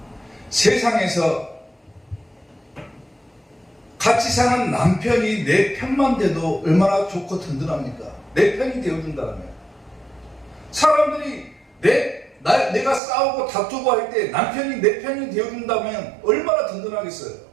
세상에서 같이 사는 남편이 내 편만 돼도 얼마나 좋고 든든합니까? 내 편이 되어준다면. 사람들이 내가 싸우고 다투고 할 때 남편이 내 편이 되어준다면 얼마나 든든하겠어요?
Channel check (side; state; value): left; drops out; at 13.0 s